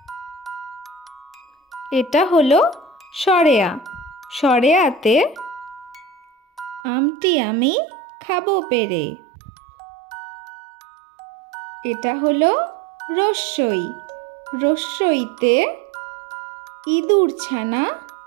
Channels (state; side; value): drops out; left; at 6.8 s